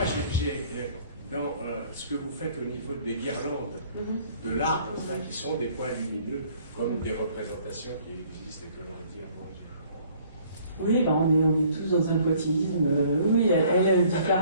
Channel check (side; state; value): both; inverted; correlation -0.58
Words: j'ai dans ce que vous faites au niveau des guirlandes de l'art, enfin, qui sont des points lumineux, comme des représentations qui existent et que l'on dit avant. Oui, on est tous dans un poitinisme. Oui, elle